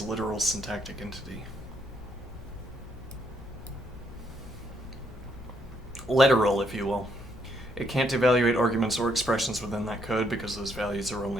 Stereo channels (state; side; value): noise; left; rumble, 15 dB below the sound